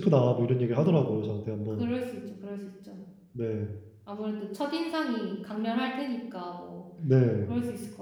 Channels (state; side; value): identical; both; correlation 1.00